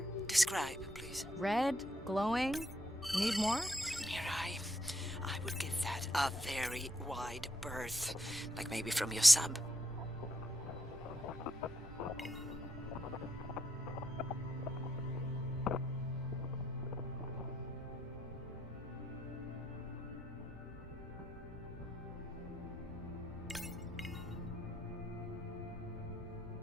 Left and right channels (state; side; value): normal; both; correlation 0.76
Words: Describe, please. Red? Glowing? Need more? Mirai, I would give that a very wide berth. Like maybe from your sub.